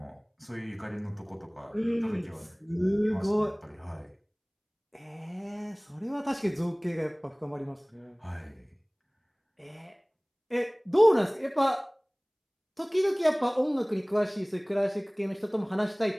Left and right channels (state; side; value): identical; both; correlation 1.00